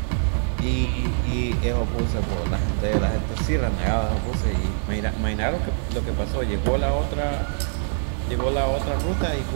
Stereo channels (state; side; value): silent; left; 63 dB below the other